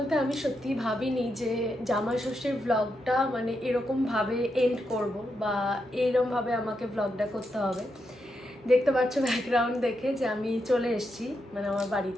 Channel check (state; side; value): normal; both; correlation 0.83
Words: আমি সত্যি ভাবিনি যে জামাই ষষ্ঠীর ব্লগটা মানে এরকম ভাবে এন্ড করব, বা এইরকম ভাবে আমাকে ব্লগটা করতে হবে। দেখতে পাচ্ছ ব্যাকগ্রাউন্ড দেখে যে আমি চলে এসেছি মানে আমার